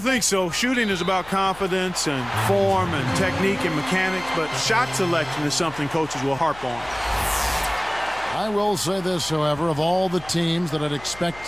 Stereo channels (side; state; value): left; noise; hum, 20 dB below the sound